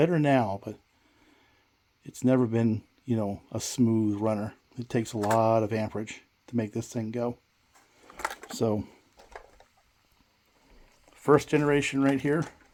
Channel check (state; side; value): identical; both; correlation 1.00